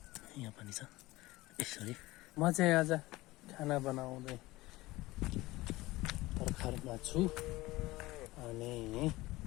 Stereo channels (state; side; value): quieter; right; 19.3 dB